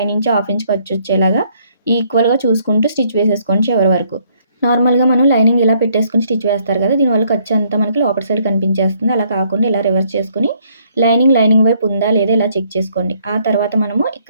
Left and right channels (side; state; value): both; inverted; correlation -0.67